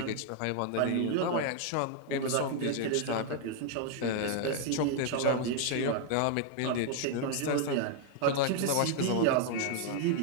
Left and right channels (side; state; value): both; different; correlation 0.00